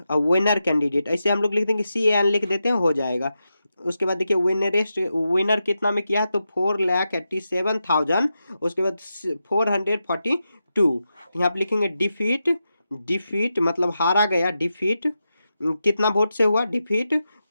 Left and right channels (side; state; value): both; inverted; correlation -0.89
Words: और विनर कैंडिडेट, ऐसे हम लोग लिख देंगे CAN लिख देते हैं, हो जाएगा। उसके बाद देखिए विनर कितना में किया है तो 4,87,000, उसके बाद 442। यहाँ पे लिखेंगे डिफीट मतलब हारा गया, डिफीट कितना वोट से हुआ डिफीट,